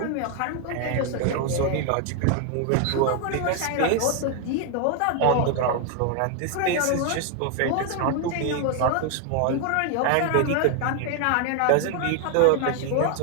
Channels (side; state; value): both; different; correlation 0.01